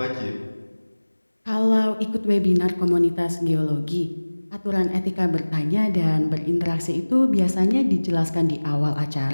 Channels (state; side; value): inverted; both; correlation -1.00